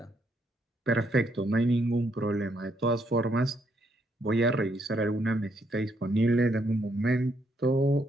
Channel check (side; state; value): both; normal; correlation 0.74